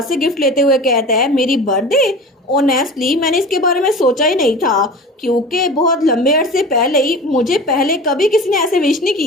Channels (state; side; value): normal; both; correlation 0.36